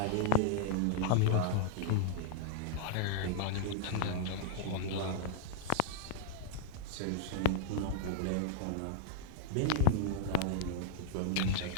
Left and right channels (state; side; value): different; both; correlation -0.01